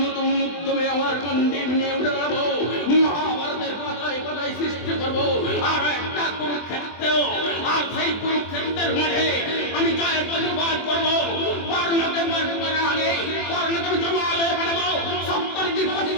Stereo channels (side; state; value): right; late; 24 ms